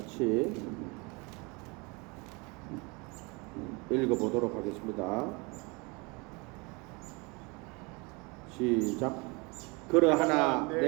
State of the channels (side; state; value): left; quieter; 28.4 dB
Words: 읽어보도록 하겠습니다. 시작. 그러하나